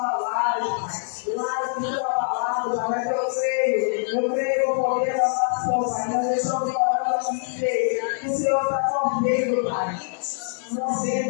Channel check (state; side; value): silent; right; digital silence